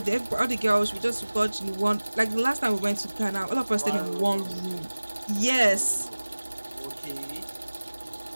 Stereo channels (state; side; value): inverted; both; correlation -1.00